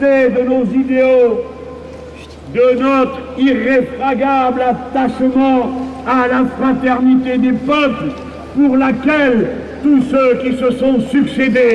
de nos idéaux, de notre irréfragable attachement à la fraternité des peuples, pour laquelle tous ceux qui se sont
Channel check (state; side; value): identical; both; correlation 1.00